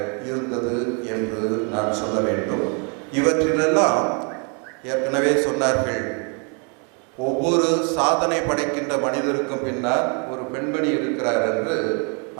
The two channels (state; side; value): quieter; left; 37.2 dB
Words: இருந்தது என்று நான் சொல்ல வேண்டும். இவற்றிலெல்லாம் ஏற்கனவே சொன்னார்கள், ஒவ்வொரு சாதனை படைக்கின்ற மனிதருக்கும் பின்னால் ஒரு பெண்மணி இருக்கிறார் என்று.